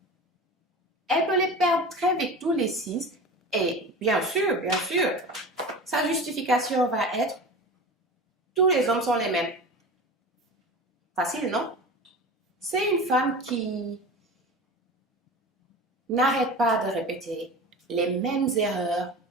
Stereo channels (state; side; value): normal; both; correlation 0.32